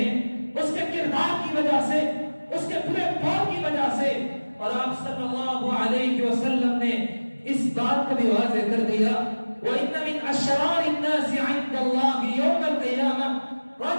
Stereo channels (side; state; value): both; inverted; correlation -1.00